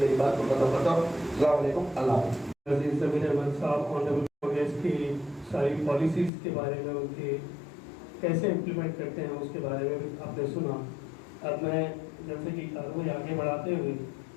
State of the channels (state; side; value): drops out; right; at 6.3 s